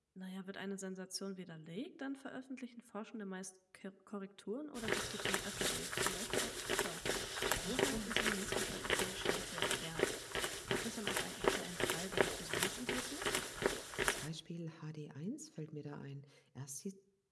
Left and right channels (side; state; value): both; identical; correlation 1.00